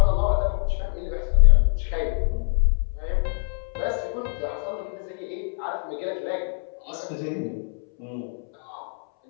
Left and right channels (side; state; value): right; silent; 62 dB below the other